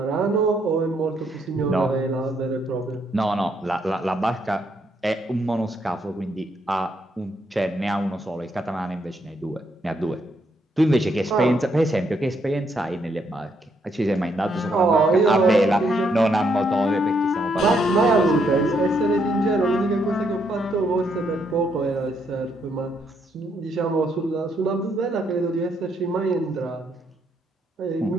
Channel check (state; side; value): normal; both; correlation 0.74